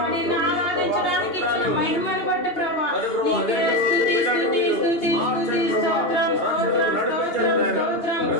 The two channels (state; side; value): late; right; 2.8 ms